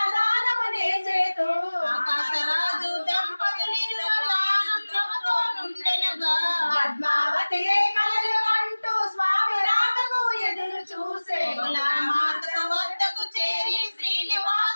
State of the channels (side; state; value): both; inverted; correlation -1.00